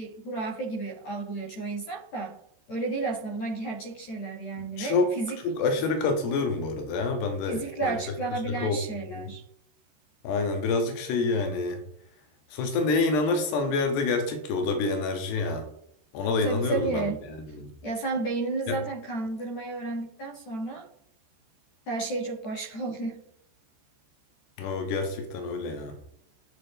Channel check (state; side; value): late; right; 13 ms